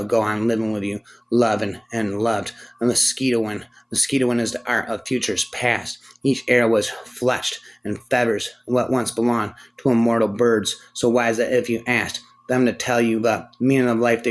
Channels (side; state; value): both; identical; correlation 1.00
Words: go on living with you, loving and loved. A mosquito wind is the art of futures past. Each arrow was fletched and feathers what once belonged to immortal birds, so wise that if you asked them to tell you the meaning of life,